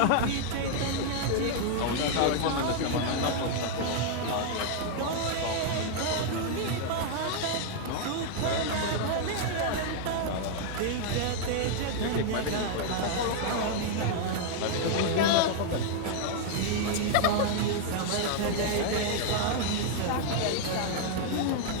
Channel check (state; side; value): different; both; correlation 0.00